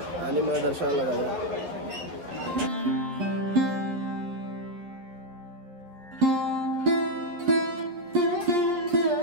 आणि मग दर्शनाला जाऊया.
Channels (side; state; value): left; late; 11 ms